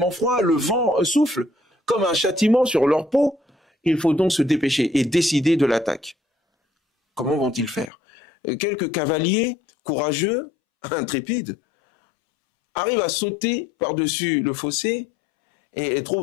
froid, le vent souffle comme un châtiment sur leur peau. Il faut donc se dépêcher et décider de l'attaque. Comment vont-ils faire? Quelques cavaliers courageux, intrépides, arrivent à sauter par-dessus le fossé et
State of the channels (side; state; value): right; drops out; at 7.9 s